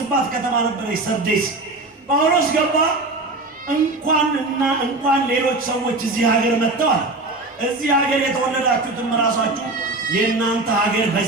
ከተማ ነበረች ሰርዴስ። ጳውሎስ ገባ። እንኳን ሌሎች ሰዎች እዚህ ሀገር መጥተዋል። እዚህ ሀገር የተወለዳችሁትም ራሳችሁ የእናንተ ሀገር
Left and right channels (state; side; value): quieter; left; 3.0 dB